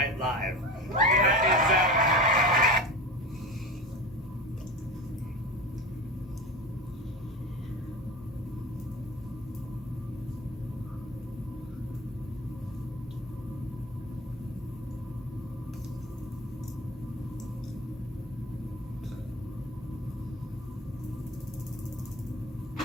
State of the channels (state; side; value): normal; both; correlation 0.30